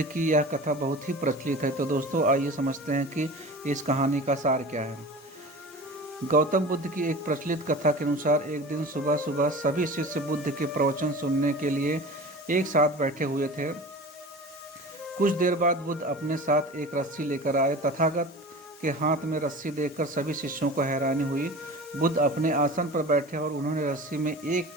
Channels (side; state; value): both; normal; correlation 0.36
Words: की यह कथा बहुत ही प्रचलित है। तो दोस्तों आइए समझते हैं कि इस कहानी का सार क्या है। गौतम बुद्ध की एक प्रचलित कथा के अनुसार एक दिन सुबह सुबह सभी शिष्य बुद्ध के प्रवचन सुनने के लिए एक साथ बैठे हुए थे। कुछ देर बाद बुद्ध अपने साथ एक रस्सी लेकर आए। तथागत के हाथ में रस्सी देखकर सभी शिष्यों को हैरानी हुई। बुद्ध अपने आसन पर बैठे और उन्होंने रस्सी में एक